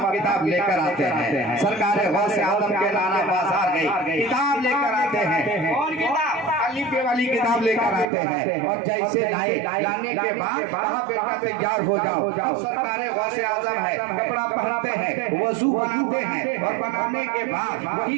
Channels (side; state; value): left; drops out; at 8.1 s